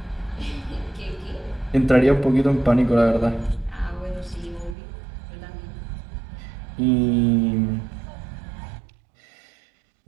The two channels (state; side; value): drops out; left; at 4.8 s